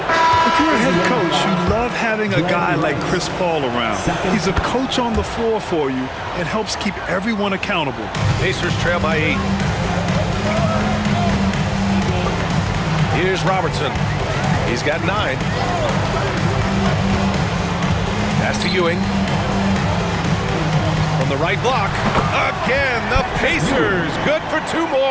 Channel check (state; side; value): identical; both; correlation 1.00